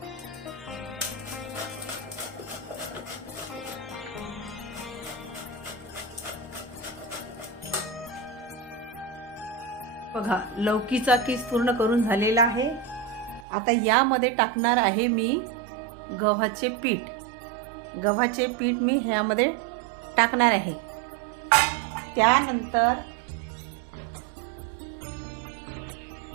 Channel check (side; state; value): left; drops out; at 13.5 s